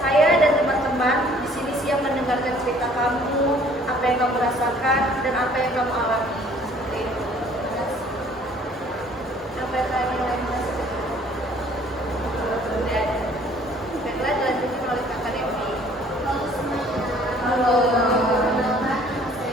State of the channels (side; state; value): both; normal; correlation 0.56